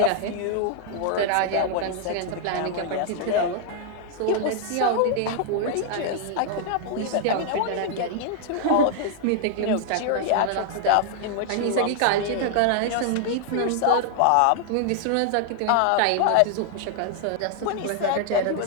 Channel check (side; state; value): both; different; correlation 0.00